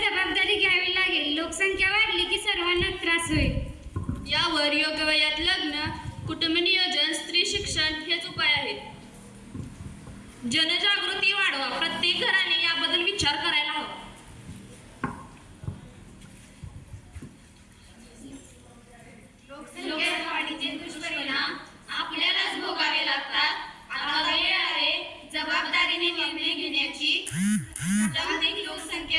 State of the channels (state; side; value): identical; both; correlation 1.00